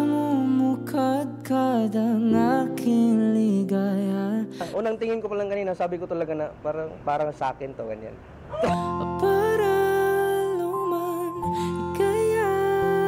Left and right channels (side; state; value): both; identical; correlation 1.00